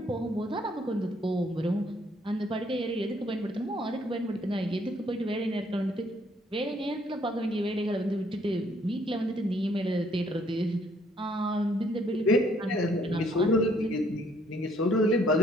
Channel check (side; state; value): both; normal; correlation 0.65